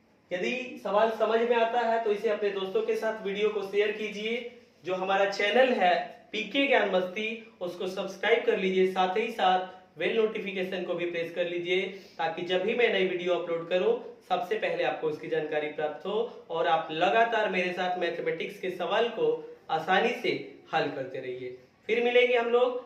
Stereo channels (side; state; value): both; identical; correlation 1.00